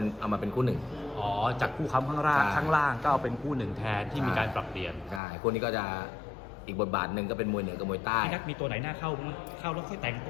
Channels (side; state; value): right; drops out; at 5.2 s